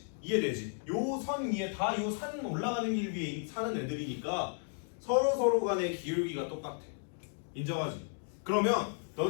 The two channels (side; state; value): right; silent; 55 dB below the other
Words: 이해되지? 요 선 위에 다 요 산 올라가는 길 위에 사는 애들이니까 서로 간의 기울기가 똑같아. 인정하지? 그러면